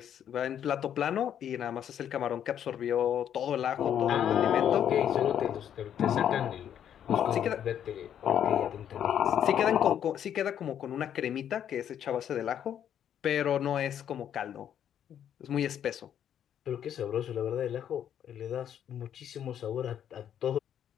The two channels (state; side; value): quieter; right; 9.6 dB